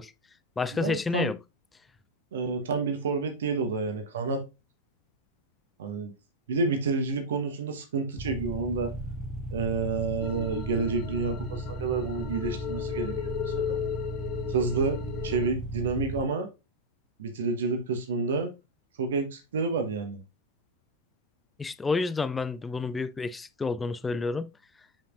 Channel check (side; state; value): both; normal; correlation -0.01